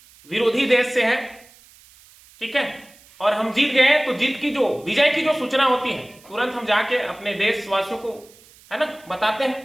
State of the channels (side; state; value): right; noise; hiss, 26 dB below the sound